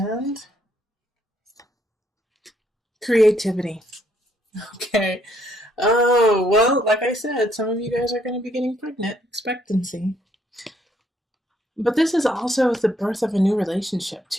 creativity. Okay. Oh, well, like I said, some of you guys are going to be getting pregnant. Expectancy. But this is also the birth of a new relationship,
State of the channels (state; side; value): normal; both; correlation 0.70